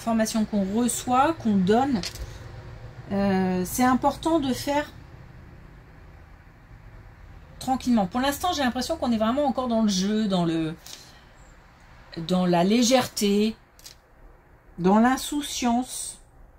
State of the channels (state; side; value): identical; both; correlation 1.00